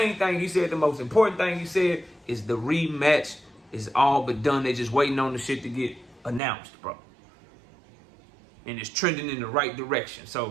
thing he said, the most important thing he said, is the rematch is all but done. They just waiting on the shit to get announced, bro. And it's trending in the right direction.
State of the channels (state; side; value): drops out; left; at 6.4 s